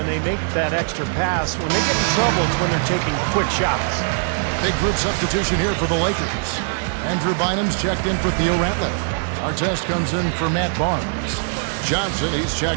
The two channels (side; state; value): left; silent; digital silence